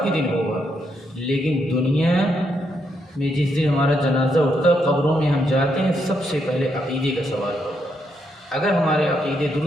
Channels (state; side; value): normal; both; correlation 0.78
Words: کے دن ہوگا, لیکن دنیا میں جس دن ہمارا جنازہ اٹھتا, قبروں میں ہم جاتے ہیں, سب سے پہلے عقیدے کا سوال ہوگا. اگر ہمارے عقیدے